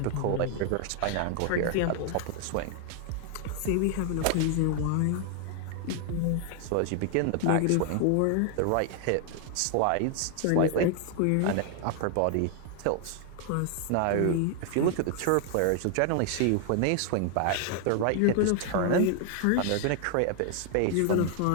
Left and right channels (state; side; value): different; both; correlation 0.00